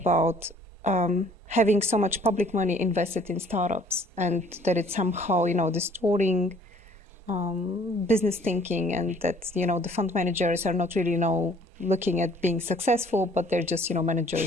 having so much public money invested in startups, and that it's somehow, distorting business thinking, and that, the fund managers are not really, looking at being successful, but they're just,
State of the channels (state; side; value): normal; both; correlation 0.57